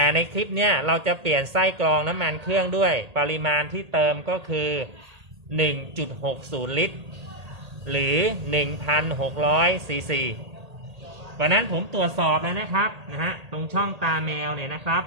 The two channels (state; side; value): late; left; 1.8 ms